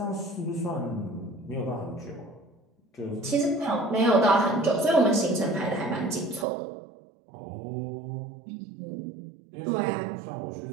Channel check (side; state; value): left; drops out; at 6.5 s